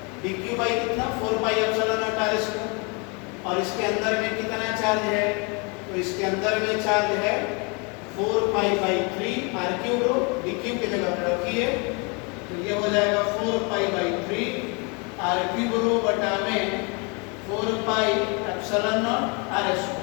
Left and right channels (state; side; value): quieter; right; 32.0 dB